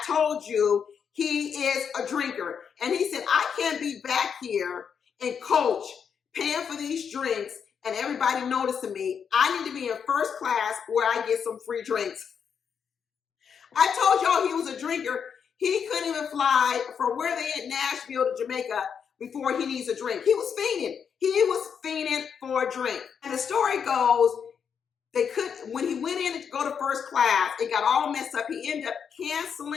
told you he is a drinker. And he said, I can't be back here in coach paying for these drinks and everybody noticing me. I need to be in first class where I get some free drinks. I told y'all he was a drinker. He couldn't even fly from where they at Nashville to Jamaica before he needs a drink. He was fiending. He was fiending for a drink. And the story goes, when he went in to go to first class, it got all messed up. He ended up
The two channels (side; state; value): right; quieter; 7.1 dB